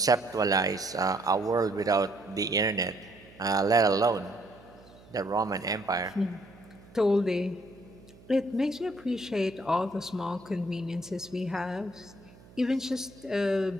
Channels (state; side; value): noise; right; hum, 23 dB below the sound